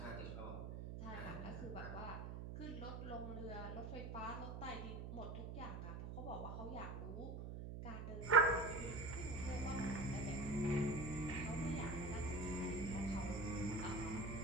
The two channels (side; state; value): right; noise; hum, 6 dB below the sound